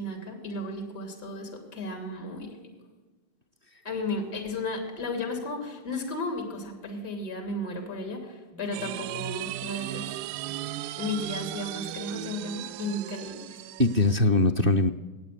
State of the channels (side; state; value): left; late; 2.6 ms